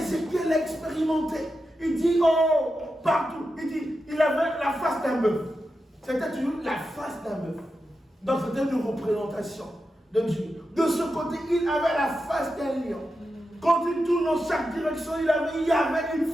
l'a expérimenté. Il dit, oh, partout. Il dit, il avait la face d'un bœuf. C'était toujours la face d'un bœuf. Donc c'était une représentation de Dieu. De ce côté, il avait la face d'un lion. Quand il tourne dans chaque direction, il y avait une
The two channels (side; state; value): both; normal; correlation 0.89